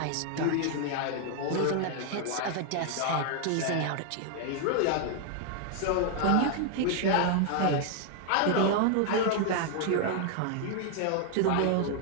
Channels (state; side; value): different; both; correlation 0.00